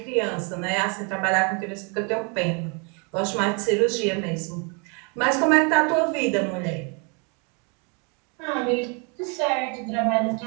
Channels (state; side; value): quieter; left; 34.8 dB